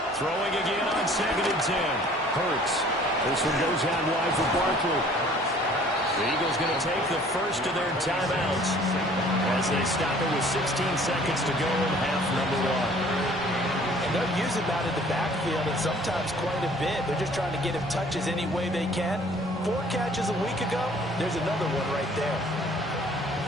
Throwing again on 2nd and 10. Hurts. This one goes out wide for Barkley. The Eagles going to take the first of their timeouts as they stop it with 16 seconds to go in half number 1. They'll use him out in the backfield and sometimes quite a bit. They're just trying to get him touches any way they can. 4 catches a week ago. There's another one right there.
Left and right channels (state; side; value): normal; both; correlation 0.54